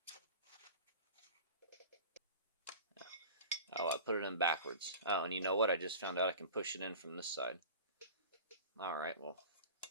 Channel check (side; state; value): both; inverted; correlation -0.37